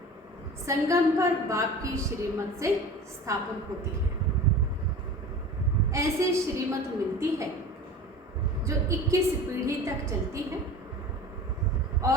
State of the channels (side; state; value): both; normal; correlation 0.37